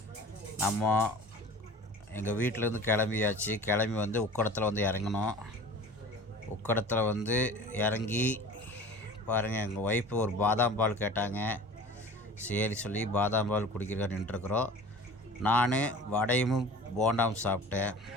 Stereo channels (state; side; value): normal; both; correlation 0.40